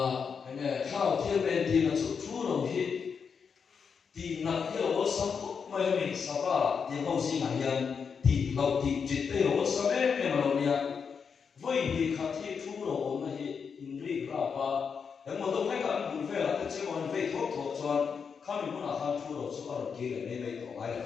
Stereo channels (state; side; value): quieter; right; 6.2 dB